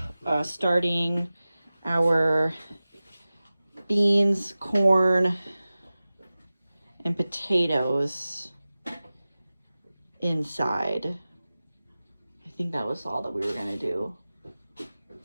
starting our beans, corn, and potatoes inside. I think that was all that we were gonna do.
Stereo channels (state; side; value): inverted; both; correlation -0.96